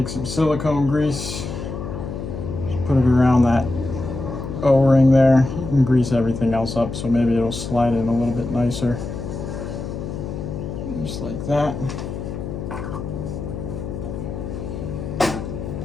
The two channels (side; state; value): left; noise; hum, 6 dB below the sound